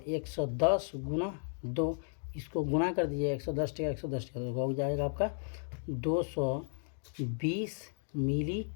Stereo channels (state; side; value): silent; right; digital silence